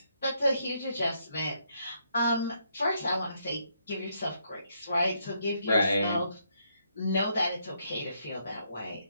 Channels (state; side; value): inverted; both; correlation -0.75